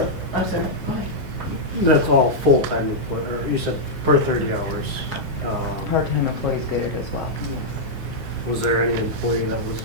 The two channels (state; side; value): late; right; 5.2 ms